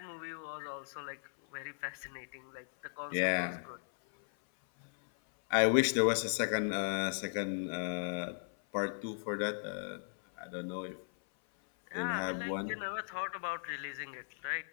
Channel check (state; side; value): silent; right; 53 dB below the other